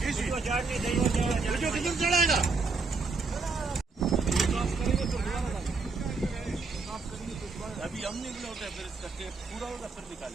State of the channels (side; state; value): left; quieter; 4.2 dB